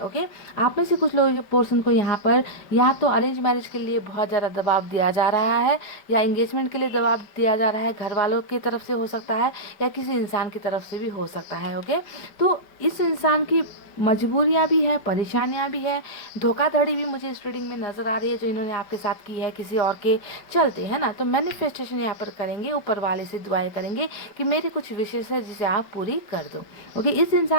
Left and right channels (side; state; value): right; late; 5.2 ms